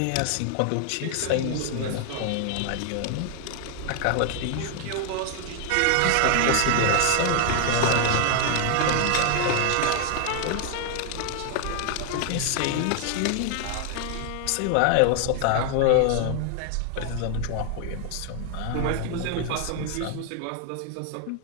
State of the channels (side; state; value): both; different; correlation 0.00